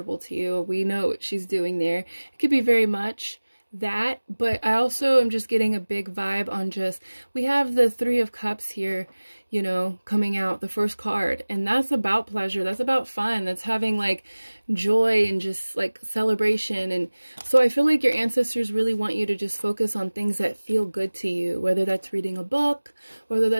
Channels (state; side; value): inverted; both; correlation -1.00